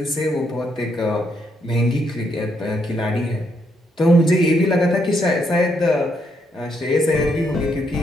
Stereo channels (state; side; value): normal; both; correlation 0.76